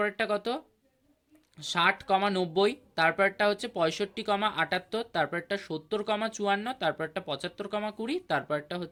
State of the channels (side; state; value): both; identical; correlation 1.00